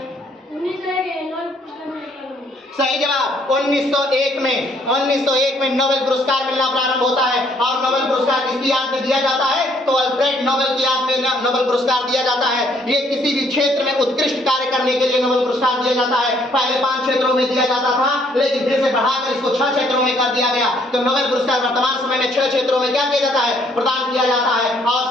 सही जवाब 1901 में नोबेल पुरस्कार मिलना प्रारंभ होता है और नोबेल पुरस्कार किसकी याद में दिया जाता है, तो अल्फ्रेड नोबेल की याद में नोबेल पुरस्कार दिया जाता है। ये किसी भी क्षेत्र में उत्कृष्ट कार्य करने के लिए नोबेल पुरस्कार दिया जाता है। पहले 5 क्षेत्रों में दिया जाता था लेकिन फिर से बढ़ाकर इसको 6 क्षेत्रों में कर दिया गया। तो नोबेल पुरस्कार वर्तमान समय में 6 क्षेत्रों में क्या किया जाता है, प्रदान किया जाता है।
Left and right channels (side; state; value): both; normal; correlation 0.66